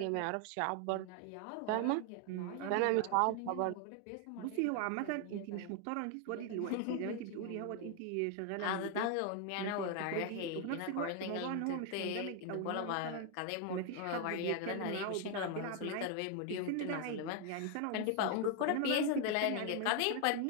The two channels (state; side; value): different; both; correlation 0.00